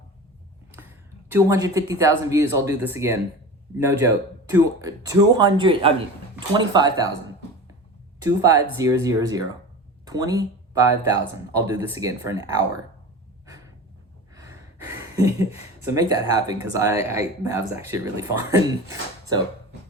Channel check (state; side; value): normal; both; correlation 0.33